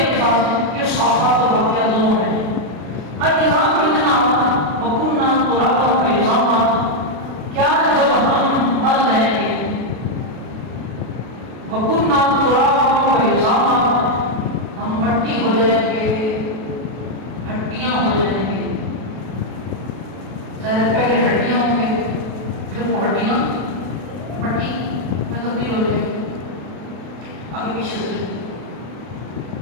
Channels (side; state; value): left; late; 32 ms